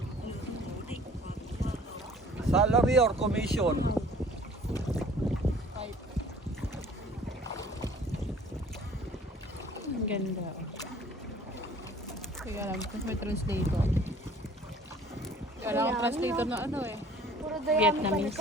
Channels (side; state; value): both; normal; correlation 0.51